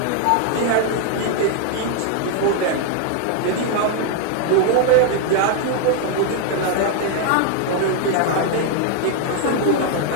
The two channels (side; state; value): both; different; correlation 0.00